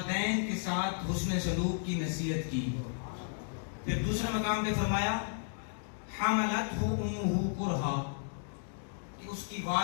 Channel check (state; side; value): silent; right; digital silence